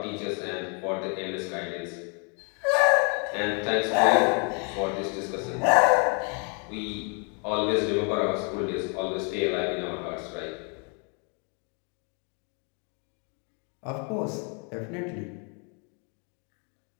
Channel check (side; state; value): right; quieter; 37.0 dB